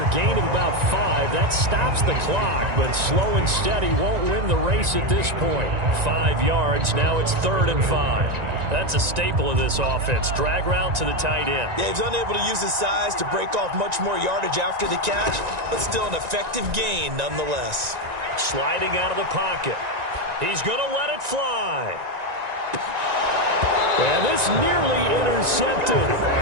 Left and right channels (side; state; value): left; late; 1.9 ms